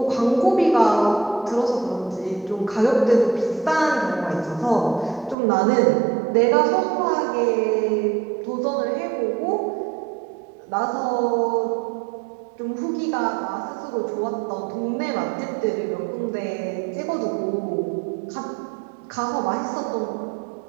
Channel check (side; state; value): left; drops out; at 5.4 s